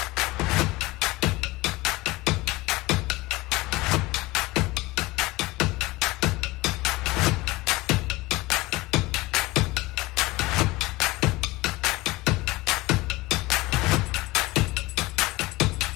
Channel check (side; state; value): right; quieter; 21.0 dB